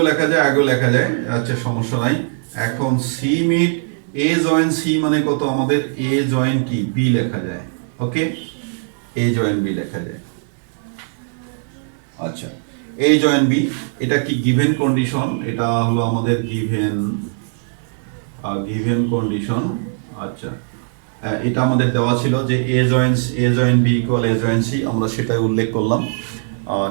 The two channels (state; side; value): silent; left; digital silence